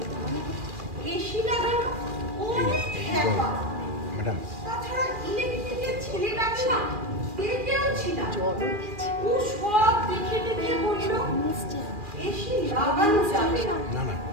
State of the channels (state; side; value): late; left; 2.4 ms